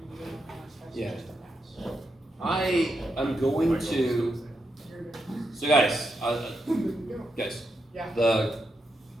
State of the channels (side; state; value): both; normal; correlation 0.84